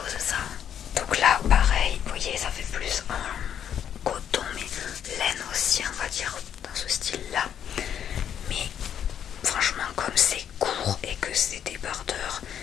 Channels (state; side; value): quieter; right; 9.2 dB